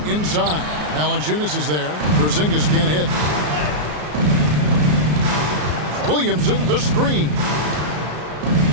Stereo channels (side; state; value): left; late; 33 ms